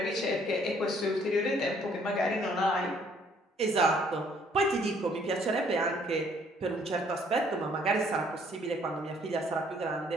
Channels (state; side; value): normal; both; correlation 0.63